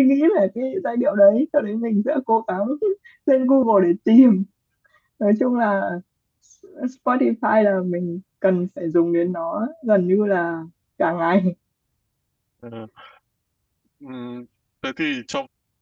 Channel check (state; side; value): identical; both; correlation 1.00